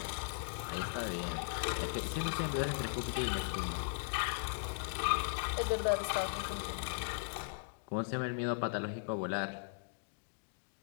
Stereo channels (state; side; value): silent; right; digital silence